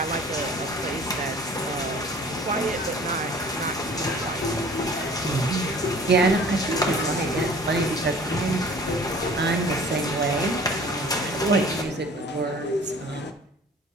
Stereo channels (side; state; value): both; normal; correlation 0.48